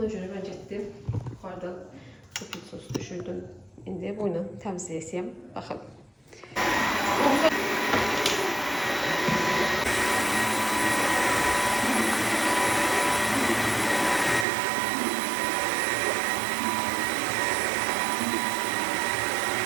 görə mən getdim, yuxarıdan bu pilisos düşürdüm. İndi bu ilə təmizləyəcəyəm. Baxın.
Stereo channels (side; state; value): left; drops out; at 14.5 s